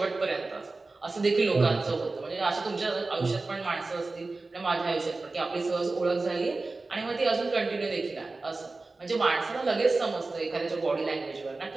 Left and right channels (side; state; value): left; quieter; 3.5 dB